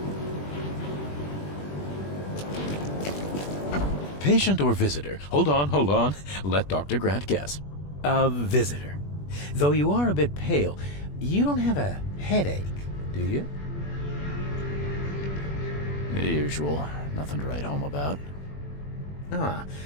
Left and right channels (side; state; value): right; late; 21 ms